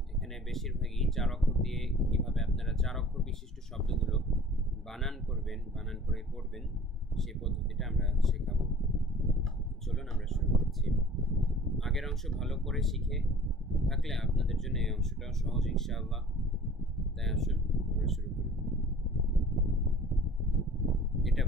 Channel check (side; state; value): both; normal; correlation 0.46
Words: এখানে বেশিরভাগই ৪ অক্ষর দিয়ে কিভাবে আপনারা ৪ অক্ষর বিশিষ্ট শব্দগুলো বানান করবেন, বানান করে পড়বেন, সেই পদ্ধতিটা আমরা শেখাবো। চলুন আমরা শুরু করছি। আগের অংশ ভালো করে শিখে থাকলে আপনাদের জন্য এই অংশটাও সহজ ইনশাআল্লাহ। তাই আসুন আমরা শুরু করি। এটা